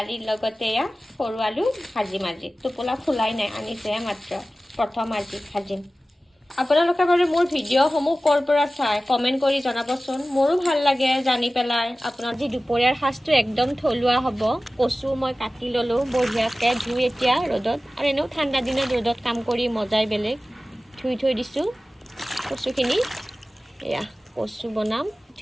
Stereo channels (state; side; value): normal; both; correlation 0.96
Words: লগতে এয়া সৰু আলু ভাজি টোপোলা ফুলাই নাই, আনিছেহে মাত্ৰ, প্ৰথম আজি ভাজিম। আপোনালোকে বাৰু মোৰ ভিডিঅ'সমূহ ক'ৰ পৰা চাই কমেণ্ট কৰি জনাবচোন, মোৰো ভাল লাগে জানি পেলাই। আপোনাৰ যি দুপৰীয়াৰ সাজটো একদম থলুৱা হ'ব। কচু মই কাটি ল'লোঁ বঢ়িয়াকৈ ধুই এতিয়া ৰ'দত, আৰু এনেও ঠাণ্ডা দিনত ৰ'দত কাম কৰি মজাই বেলেগ। ধুই থৈ দিছোঁ কচুখিনি। এয়া কচু বনাম,